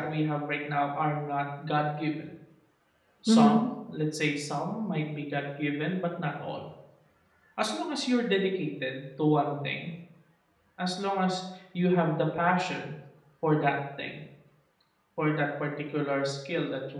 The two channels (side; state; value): both; identical; correlation 1.00